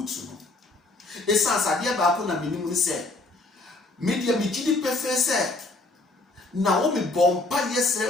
no esansa de ba ko na minim ni se media migidi pefe se na wo me bompa yesre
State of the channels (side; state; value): right; quieter; 3.0 dB